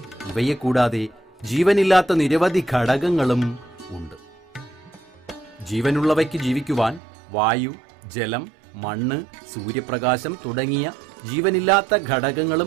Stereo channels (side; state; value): left; drops out; at 7.0 s